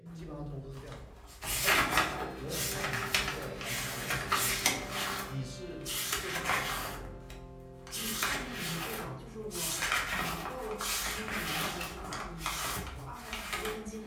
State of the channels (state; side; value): identical; both; correlation 1.00